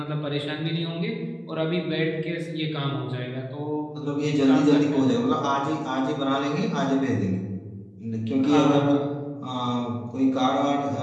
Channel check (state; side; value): identical; both; correlation 1.00